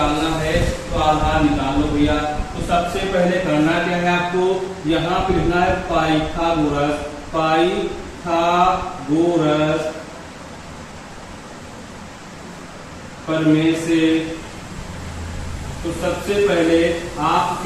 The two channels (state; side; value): identical; both; correlation 1.00